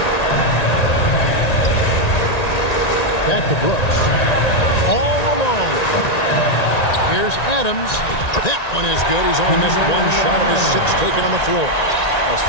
Back to Brooks. All alone. Here's Adams. That one is good. He's only missed 1 shot of his 6 taken on the floor. Well,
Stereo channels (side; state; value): right; late; 1.9 ms